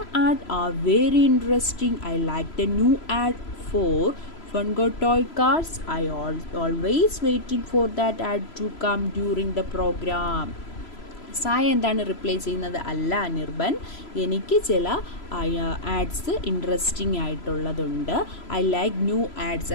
ad are very interesting. I like the new ad for Funko toy cars. I always waiting for that ad to come during the program. Saya എന്താണ് reply ചെയ്യുന്നത്? അല്ല അനിർബൻ, എനിക്ക് ചില ആഡ്സ് ഇൻട്രസ്റ്റിംഗ് ആയിട്ടുള്ളതുണ്ട്. I like new ads.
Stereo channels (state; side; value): late; right; 3.0 ms